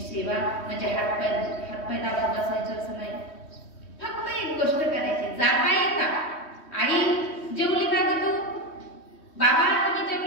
म्हणजे हातपाय दाबून बसायचं असं नाही. फक्त एक गोष्ट करायची, जाता येता आई जेवली का ग तू, बाबा तुम्ही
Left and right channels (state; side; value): late; right; 3.1 ms